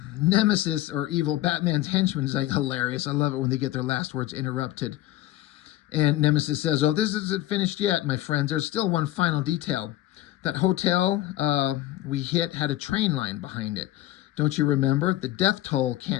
or evil Batman's henchman, is like hilarious. I love it when they get their last words interrupted. And Nemesis says, oh, this isn't finished yet, my friends. There's still one final detail. That hotel we hit had a train line behind it. Don't you remember? The death toll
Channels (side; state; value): right; quieter; 14.9 dB